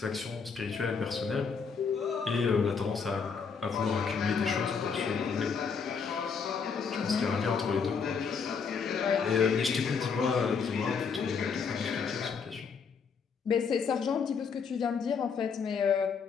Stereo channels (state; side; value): quieter; right; 5.8 dB